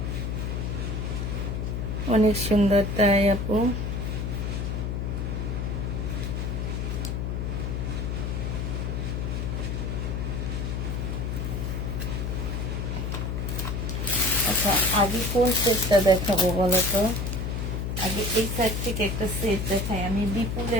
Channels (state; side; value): noise; left; hum, 2 dB below the sound